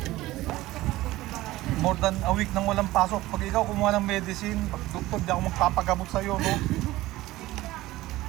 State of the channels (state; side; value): quieter; left; 17.4 dB